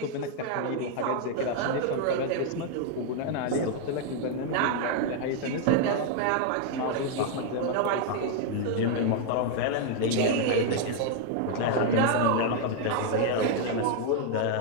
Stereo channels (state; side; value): different; both; correlation 0.00